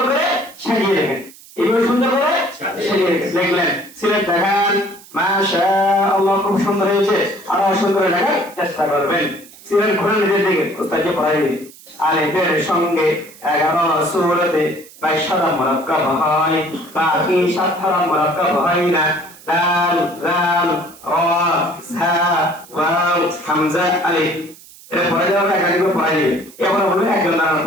করে সাজিয়ে রেখেন, এইভাবে সুন্দর করে সাজিয়ে রেখেন। দেখলেন সিলেট দেখান, মাশাআল্লাহ খুব সুন্দর হয়েছে, আরো সুন্দর দেখার চেষ্টা করবেন। সিলেট ঘুরে নিজের দিকে উস্তাদকে পড়াই দিন। আলিফের সঙ্গে 11 সূরাতে 22 মুরাক্কাব হয়, বাকি 7 মুরাক্কাব হয় না। দাল দাল রা জা ওয়াও হামজা আলিফ। এটা পড়া যাওয়ার একাধিক পড়াই দিবে। এবার বলবে একজন দাঁড়ান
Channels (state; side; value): noise; right; hiss, 22 dB below the sound